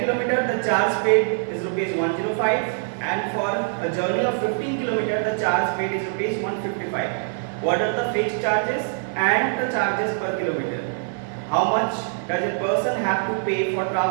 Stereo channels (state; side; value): silent; left; digital silence